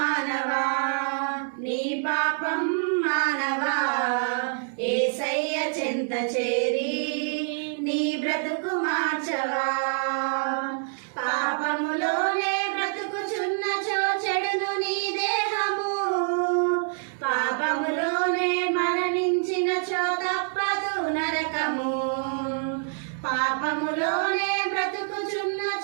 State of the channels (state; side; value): silent; left; 61 dB below the other